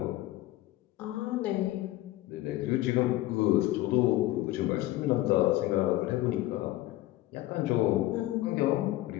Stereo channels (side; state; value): right; quieter; 16.6 dB